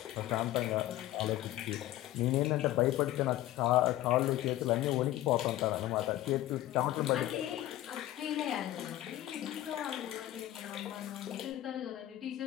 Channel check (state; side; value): quieter; right; 14.6 dB